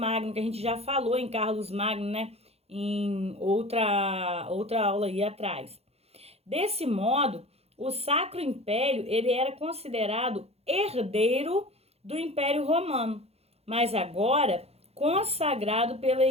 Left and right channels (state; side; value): late; left; 0.30 ms